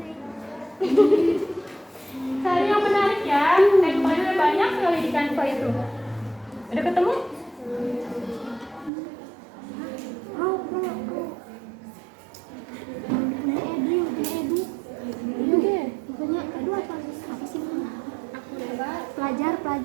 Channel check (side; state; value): left; drops out; at 8.9 s